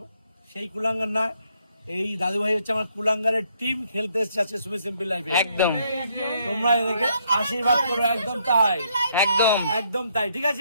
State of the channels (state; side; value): inverted; both; correlation -0.71